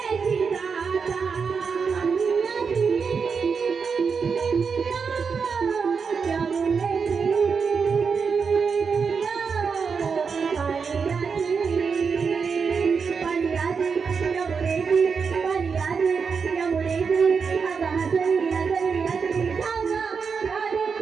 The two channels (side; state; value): left; quieter; 5.7 dB